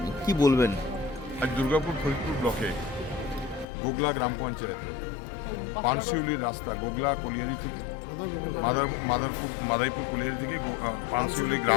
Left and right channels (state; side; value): drops out; right; at 3.7 s